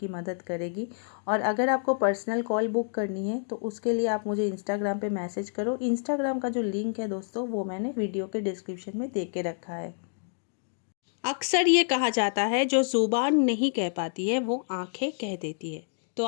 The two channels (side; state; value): right; silent; digital silence